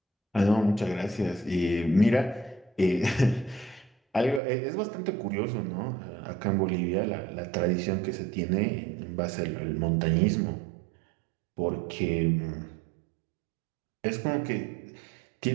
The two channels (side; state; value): left; drops out; at 4.4 s